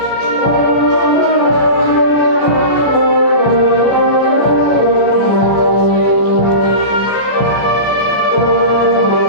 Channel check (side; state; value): right; late; 14 ms